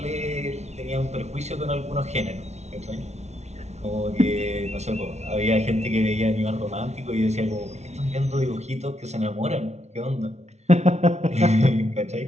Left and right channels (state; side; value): late; left; 0.32 ms